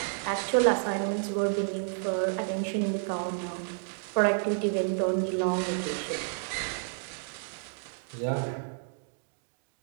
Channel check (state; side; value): silent; left; digital silence